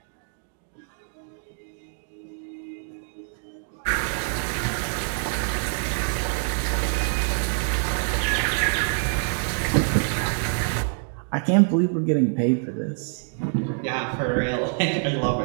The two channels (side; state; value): left; silent; digital silence